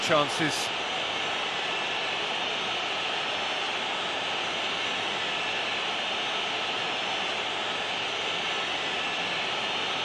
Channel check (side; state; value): both; identical; correlation 1.00